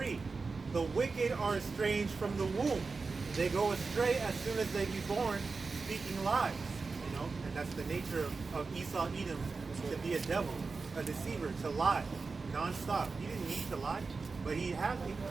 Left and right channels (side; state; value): left; quieter; 4.3 dB